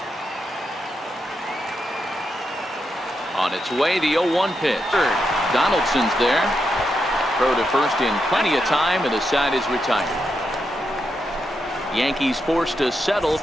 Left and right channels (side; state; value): both; normal; correlation 0.84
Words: On its way, the 0-1 pitch. Donaldson's there. Throw to first in plenty of time, and the side is retired. Yankees forced to settle